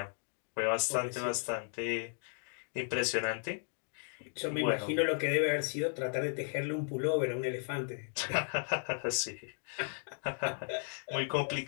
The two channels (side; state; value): right; silent; 54 dB below the other